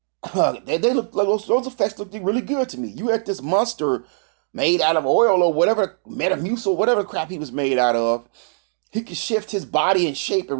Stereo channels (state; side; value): silent; left; digital silence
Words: They look like those effects looked really good to me. You had this monster made out of oil or whatever, Metamucil, whatever crap he was made out of. He could shift his body and shape